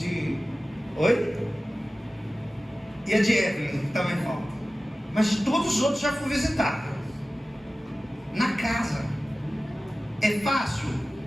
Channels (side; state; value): both; normal; correlation 0.96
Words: Oi? E a de Evelyn, que também falta. Mas de todos os outros já fui visitar. Na casa. É fácil?